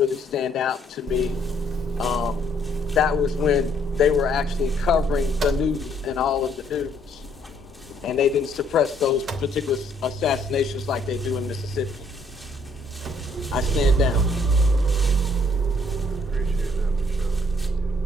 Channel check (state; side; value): normal; both; correlation 0.66